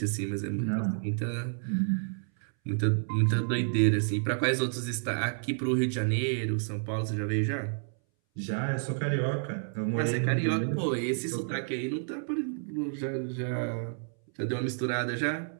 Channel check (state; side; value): silent; left; 58 dB below the other